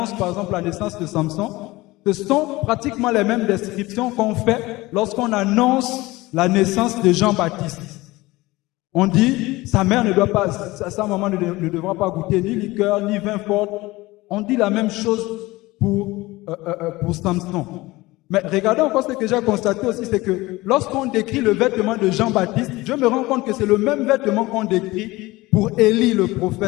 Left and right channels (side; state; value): right; quieter; 20.1 dB